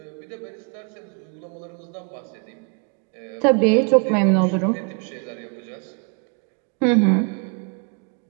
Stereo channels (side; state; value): left; quieter; 37.0 dB